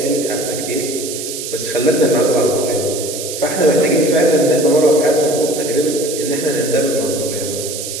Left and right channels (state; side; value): noise; right; hiss, 7 dB below the sound